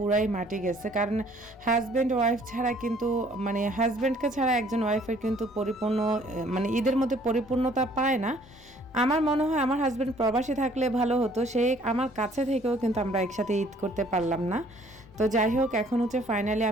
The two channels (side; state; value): both; normal; correlation 0.59